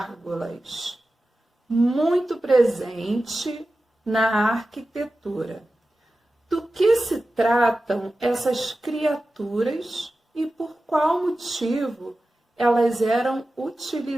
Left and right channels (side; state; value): both; normal; correlation 0.94